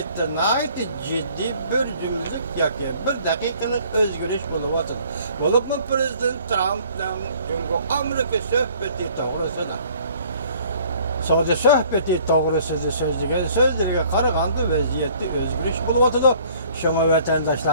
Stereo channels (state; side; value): inverted; both; correlation -0.56